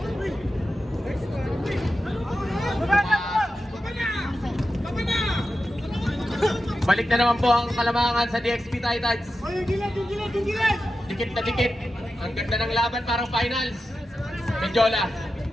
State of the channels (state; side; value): normal; both; correlation 0.91